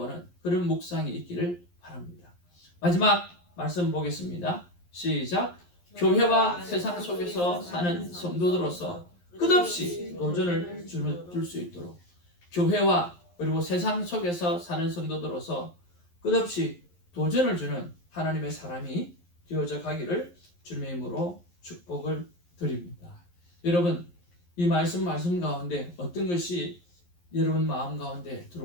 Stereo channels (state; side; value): late; right; 11 ms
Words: 그런 묵상이 있기를 바랍니다. 마지막 말씀 보겠습니다. 시작. 교회와 세상 속에서 사는 성도들로서 끝없이 도전을 줄 수 있도록 교회와 그리고 세상 속에서 사는 성도들로서 끝없이 도전을 주는 하나님의 사람이 되어져 가기를 주님의 이름으로 축복을 드립니다. 여러분 이 말씀 가운데 어떤 것이 여러분 마음 가운데